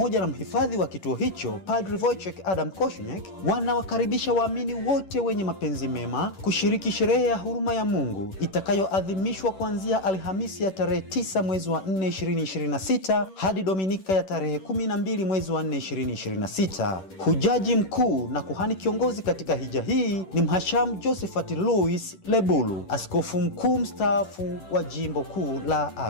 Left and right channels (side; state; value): right; late; 10 ms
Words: na mhifadhi wa kituo hicho Padre Wojciech Adam Kośniak, wanawakaribisha waamini wote wenye mapenzi mema kushiriki sherehe ya huruma ya Mungu itakayoadhimishwa kuanzia Alhamisi ya tarehe 9 mwezi wa 4 2026 hadi Dominika ya tarehe 12 mwezi wa 4 2026. Hujaji mkuu na kuhani kiongozi katika hija hii ni Mhashamu Josephat Louis Lebulu, askofu mkuu mstaafu wa Jimbo Kuu la